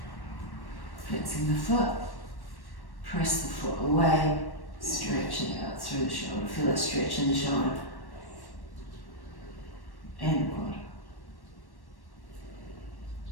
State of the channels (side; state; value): right; late; 1.1 ms